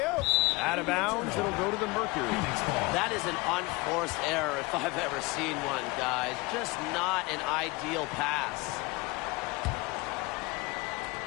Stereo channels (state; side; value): quieter; right; 24.2 dB